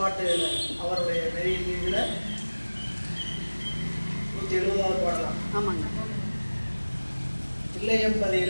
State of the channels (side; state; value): both; inverted; correlation -1.00